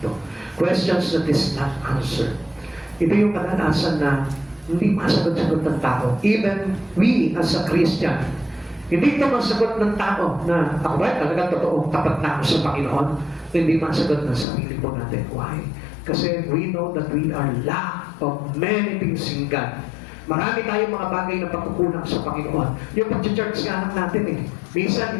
Questions that is not answered. Ito yung kadalasan na hindi masagot-sagot ng tao. Even we as a Christian, hindi ito masagot ng tao na ako ba talagang totoo, tapat na ako sa Panginoon. Hindi masagot ng sarili po natin. Why? Kasi we know that we are lack of many things in God. Marami tayong mga bagay na pagkukulang sa Panginoon. Yung pag-church nga lang natin minsan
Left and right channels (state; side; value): drops out; right; at 14.5 s